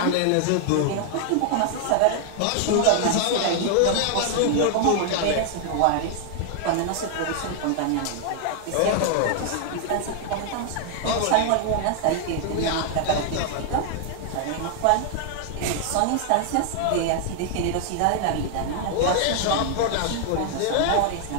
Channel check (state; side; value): different; both; correlation 0.00